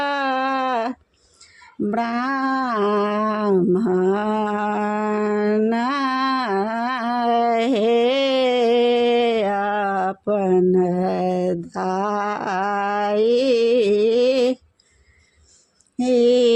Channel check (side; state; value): both; identical; correlation 1.00